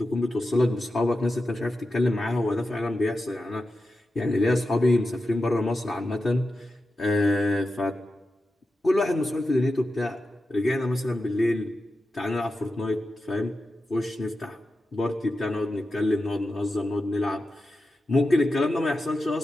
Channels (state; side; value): normal; both; correlation 0.91